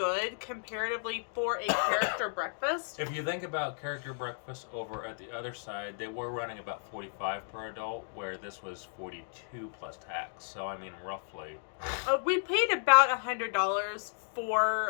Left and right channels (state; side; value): silent; right; digital silence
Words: comparatively for a character breakfast. If you think about character breakfast over at the other side, they were running about $45 per adult, where this was $42 plus tax. So I mean, roughly. We paid about $100